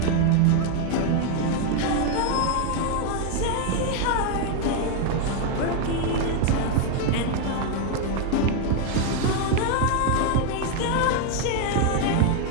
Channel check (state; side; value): different; both; correlation 0.01